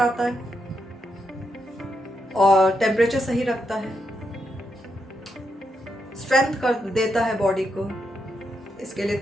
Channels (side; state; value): both; normal; correlation 0.82